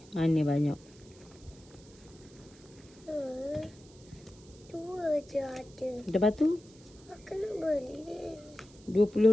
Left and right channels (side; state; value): right; noise; hiss, 25 dB below the sound